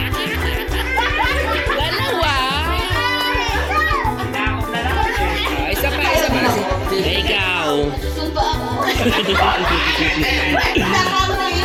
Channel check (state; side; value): identical; both; correlation 1.00